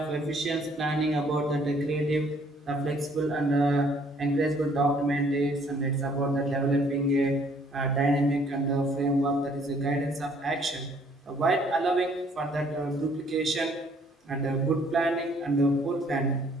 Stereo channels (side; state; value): both; normal; correlation 0.62